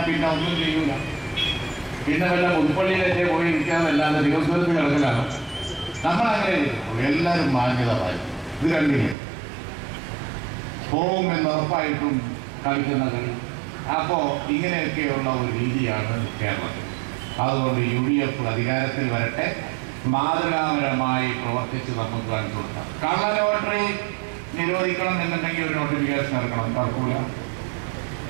പിന്നെ ഒന്നും ചെയ്യൂല. പിന്നെ വല്ല പുതുപ്പള്ളിയിലൊക്കെ പോയി ഇരിക്കാന്നല്ലാതെ തിരുവനന്തപുരത്ത് കിടക്കലാണ്. നമ്മളങ്ങനെ എല്ലാവരും മാന്യത പാലിക്കും. ഇത് കണ്ടില്ലേ, പോകുമെന്ന് ഉറപ്പായിട്ടും കളിക്കുന്ന കളി. അപ്പോൾ ഇങ്ങനെയൊക്കെയുള്ള ഒരു രീതിയാണ് കേരളത്തിൽ. അതുകൊണ്ട് UDF അധികാരത്തിൽ വരട്ടെ, മാതൃകാപരമായി പ്രവർത്തിച്ച് നമുക്ക് കാണിച്ചു കൊടുക്കാം. കള്ള ലോട്ടറി നിരോധിക്കണം എന്നുണ്ടെങ്കിൽ ഒരു നോട്ടിഫിക്കേഷൻ ഇറക്കണം, തർക്കൂല.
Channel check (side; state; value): left; drops out; at 9.2 s